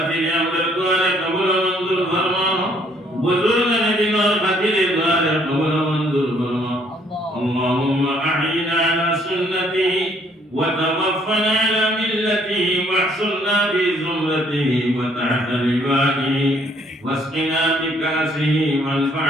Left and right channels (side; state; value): both; normal; correlation 0.64